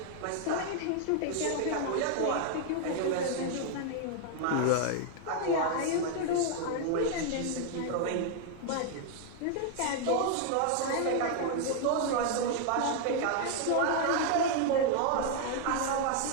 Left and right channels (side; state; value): both; different; correlation 0.00